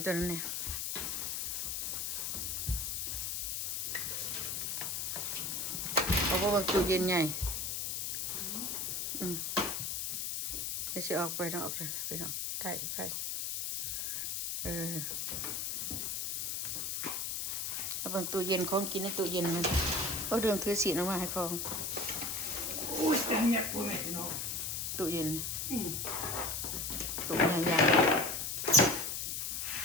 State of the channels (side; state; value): left; noise; hiss, 2 dB below the sound